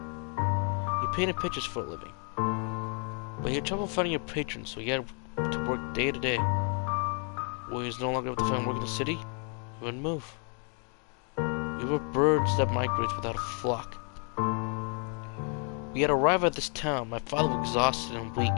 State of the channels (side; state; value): right; quieter; 39.8 dB